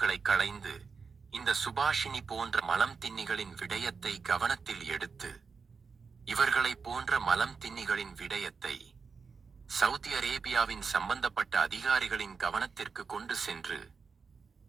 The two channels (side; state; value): left; quieter; 5.3 dB